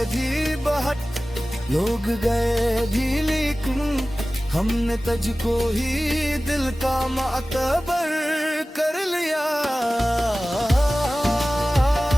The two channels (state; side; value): normal; both; correlation 0.97